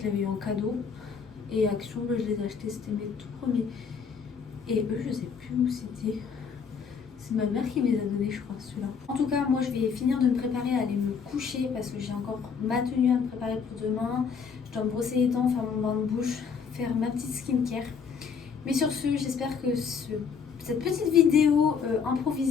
l'avais eu en cadeau. Et Action, je les ai achetés, c'était mes tout premiers. Et eux, je sais plus où c'était. C'est ma mère qui me les a donnés, je crois, ceux-là. En tout cas, moi, je vais finir de me préparer à aller me coucher parce que j'ai encore ma tenue à me préparer pour demain. Je dois me brosser les dents, faire mon bain de bouche, faire ma petite skincare. Mais sur ce, j'espère que cette petite vidéo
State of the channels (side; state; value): right; quieter; 6.2 dB